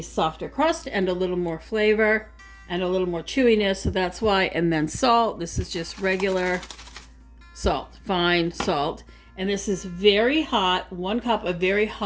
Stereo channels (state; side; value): identical; both; correlation 1.00